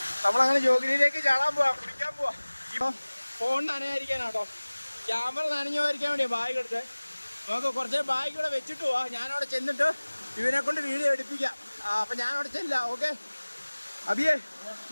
നമ്മളങ്ങനെ ജോഗിനിയിലേക്ക് ചാടാൻ പോവാ, കുടിക്കാൻ പോവാ. ഇപ്പം ഫോൺ നനയായിരിക്കാനാട്ടോ, ക്യാമറ നനഞ്ഞോയിരിക്കാൻ വേണ്ടിയാ ബാഗ് എടുത്തത്. നമുക്ക് കുറച്ച് ബാഗ് ഇവിടെ വെച്ചിട്ട് പോവാ. ഞാനവിടെ ചെന്നിട്ട് ഇവനെ കൊണ്ട് വീഡിയോ എടുപ്പിക്കാം. അപ്പം ഞാനവിടെ ചെല്ലാം. ഓക്കെ അബിയേ,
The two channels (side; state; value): both; inverted; correlation -1.00